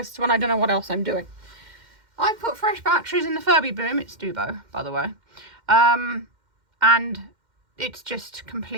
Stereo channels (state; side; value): late; left; 2.1 ms